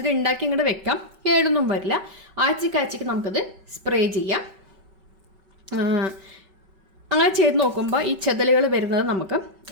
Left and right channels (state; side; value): late; left; 5.2 ms